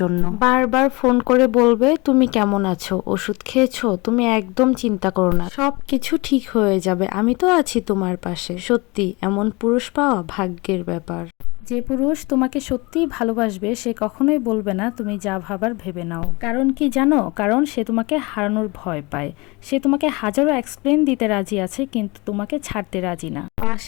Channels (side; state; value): right; quieter; 25.4 dB